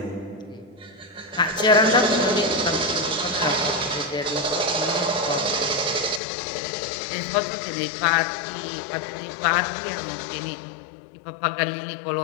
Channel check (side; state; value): right; drops out; at 6.2 s